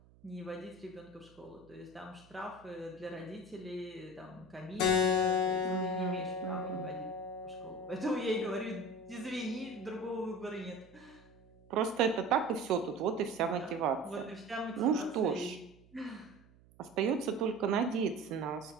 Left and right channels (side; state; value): right; noise; hum, 26 dB below the sound